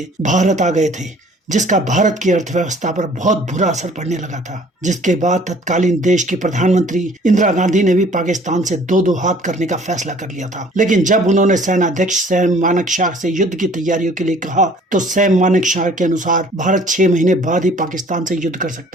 भारत आ गए थे, जिसका भारत की अर्थव्यवस्था पर बहुत बुरा असर पड़ने लगा था। जिसके बाद तत्कालीन देश की प्रधानमंत्री इंदिरा गांधी ने भी पाकिस्तान से दो दो हाथ करने का फैसला कर लिया था। लेकिन जब उन्होंने सेनाध्यक्ष सैम मानेकशॉ से युद्ध की तैयारियों के लिए कहा तो सैम मानेकशॉ के अनुसार भारत 6 महीने बाद ही पाकिस्तान से युद्ध कर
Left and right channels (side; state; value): both; normal; correlation 0.54